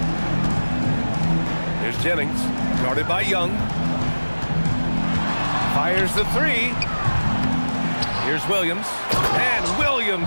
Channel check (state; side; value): inverted; both; correlation -1.00